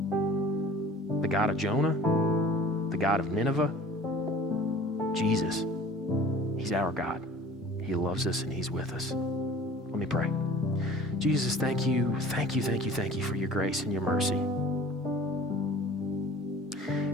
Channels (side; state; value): both; normal; correlation 0.45